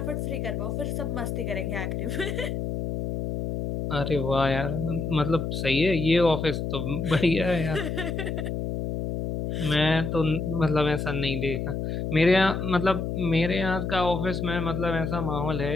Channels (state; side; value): noise; left; hum, 3 dB below the sound